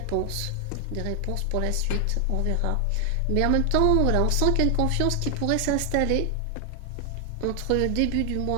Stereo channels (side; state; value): both; different; correlation 0.00